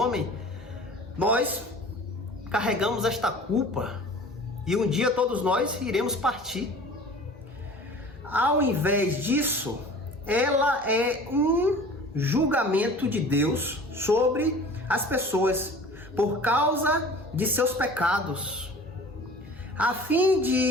nós carregamos esta culpa e um dia todos nós iremos partir. Ao invés disso, ela é um julgamento de Deus sobre as pessoas por causa de seus pecados. A fim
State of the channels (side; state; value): both; normal; correlation 0.43